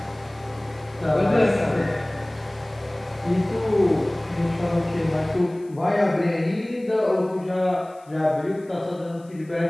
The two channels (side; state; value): left; noise; hiss, 30 dB below the sound